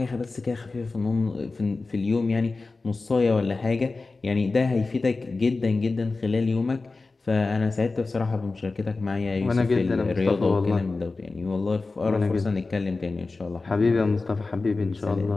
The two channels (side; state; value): right; quieter; 3.7 dB